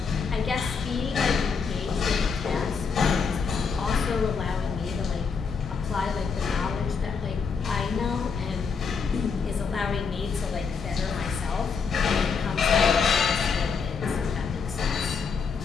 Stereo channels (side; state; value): right; quieter; 5.6 dB